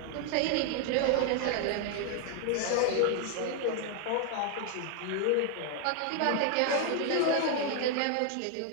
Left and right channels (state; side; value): different; both; correlation 0.00